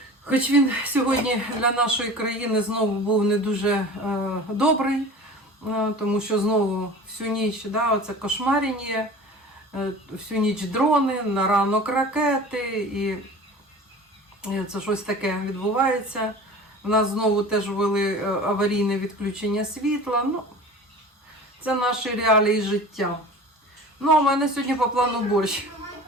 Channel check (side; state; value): both; normal; correlation 0.39